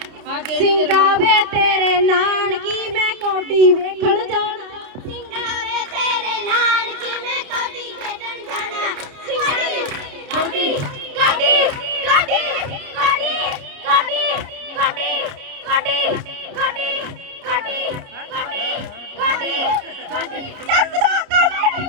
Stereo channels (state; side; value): late; left; 30 ms